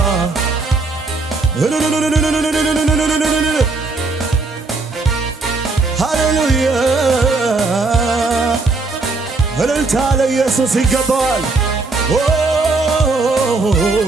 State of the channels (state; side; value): quieter; left; 3.7 dB